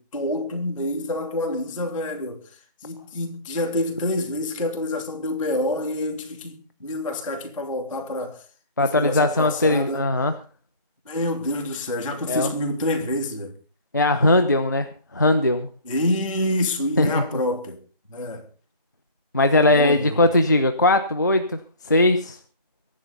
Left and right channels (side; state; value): both; inverted; correlation -0.43